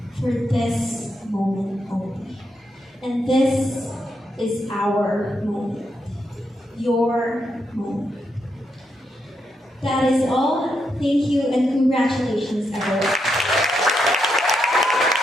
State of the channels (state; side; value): normal; both; correlation 0.81